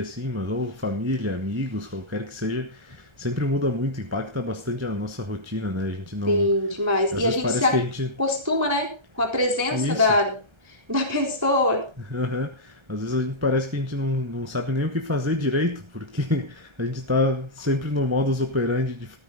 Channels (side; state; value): left; late; 1.3 ms